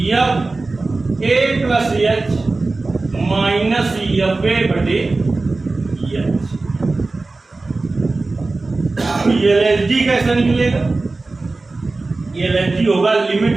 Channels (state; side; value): quieter; left; 3.5 dB